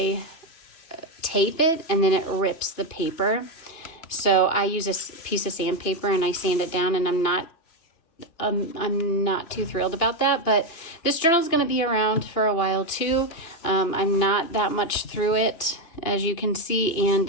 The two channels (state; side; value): late; right; 2.9 ms